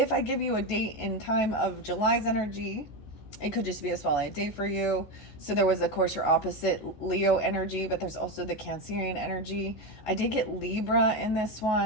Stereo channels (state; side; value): late; right; 14 ms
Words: I give you a date and time of July's energy, it could just be a spotlight date for you. So there was, of course, your opposite Leo energy, but there's also the Cancerian energy. I did get Libra in this